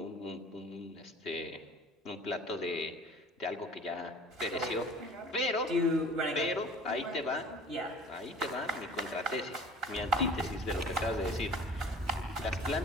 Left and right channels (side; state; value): both; normal; correlation 0.45